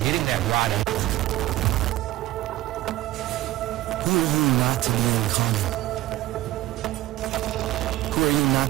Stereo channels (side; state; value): left; quieter; 16.4 dB